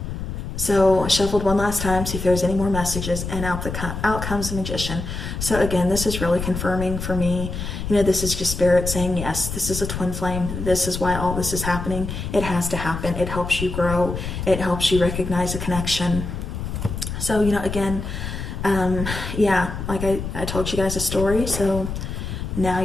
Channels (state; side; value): noise; left; rumble, 5 dB below the sound